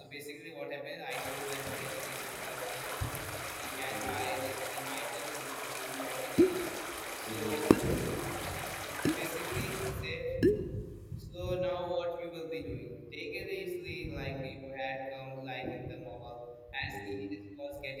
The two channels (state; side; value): identical; both; correlation 1.00